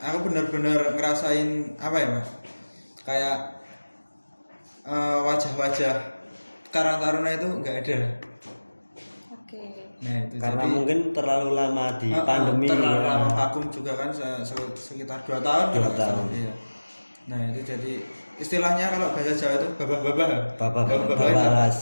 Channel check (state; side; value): inverted; both; correlation -1.00